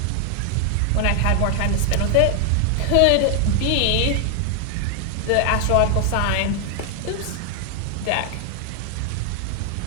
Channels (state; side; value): different; both; correlation 0.00